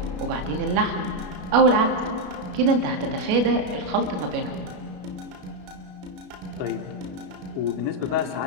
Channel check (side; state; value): left; late; 33 ms